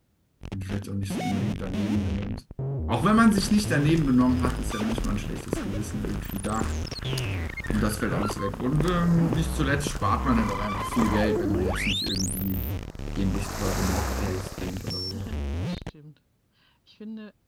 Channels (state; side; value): identical; both; correlation 1.00